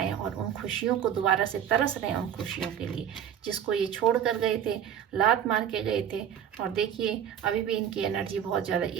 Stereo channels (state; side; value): quieter; left; 9.4 dB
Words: और उन खुशियों को दोबारा से तरस रहे हैं, उन खुशियों के लिए जिसको ये छोड़ कर गए थे, लात मार के गए थे। और देखिए अभी भी इनकी एनर्जी बहुत ज़्यादा